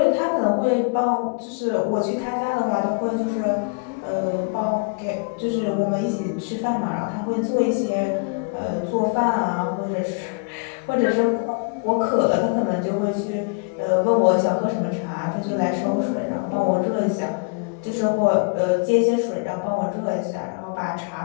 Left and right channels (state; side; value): quieter; right; 35.5 dB